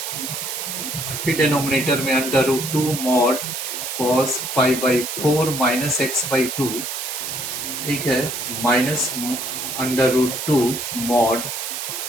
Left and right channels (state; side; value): noise; right; hiss, 5 dB below the sound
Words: फिर डिनोमिनेटर में under root 2 mod cos pi by 4 minus x by 2, ठीक है, minus under root 2 mod